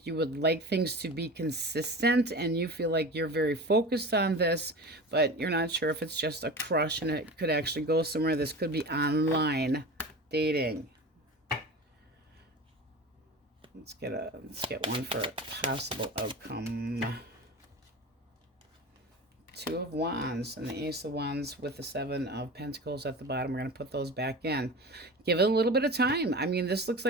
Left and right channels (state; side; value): normal; both; correlation 0.32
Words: you would like things to be consistent, and you feel like you're very focused on this, but you're not sure if it's just a crush and it could actually go somewhere. This could be online dating. Let's get one for a possible outcome. Two of Wands and the Ace of Wands with the Seven of Pentacles at the bottom. We're going to put those back in. Give it a little bit of time. I mean, this looks